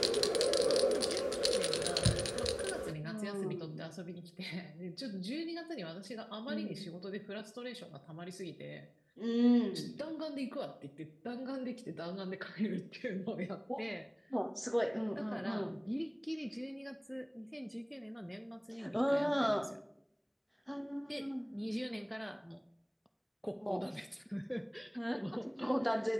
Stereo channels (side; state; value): both; identical; correlation 1.00